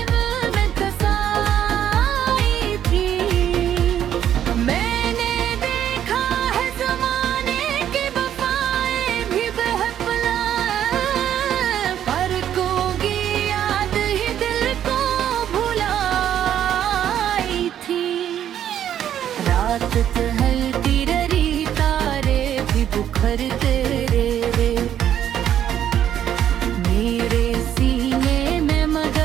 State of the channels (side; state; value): left; quieter; 10.3 dB